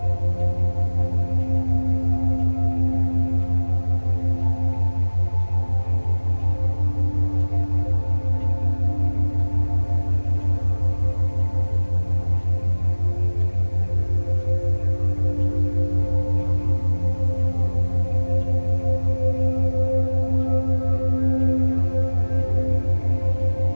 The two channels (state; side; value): inverted; both; correlation -1.00